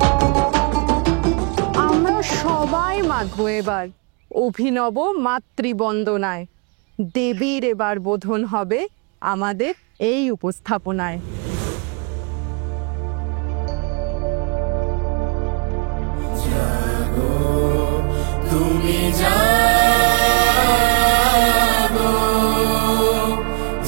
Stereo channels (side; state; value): left; quieter; 32.3 dB